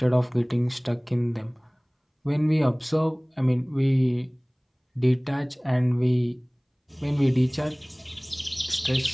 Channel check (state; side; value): identical; both; correlation 1.00